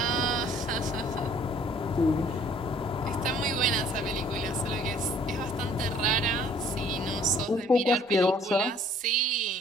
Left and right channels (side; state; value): both; normal; correlation 0.57